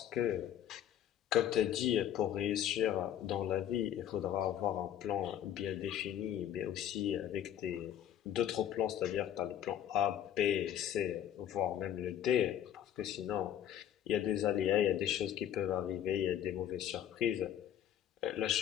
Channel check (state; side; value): quieter; right; 10.5 dB